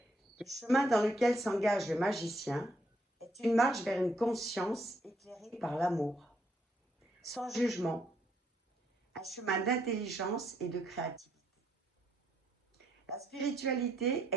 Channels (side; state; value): both; normal; correlation 0.73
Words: Le chemin dans lequel s'engage le magicien est une marche vers une conscience éclairée par l'amour, sans jugement, un chemin d'intelligence et de créativité. La spiritualité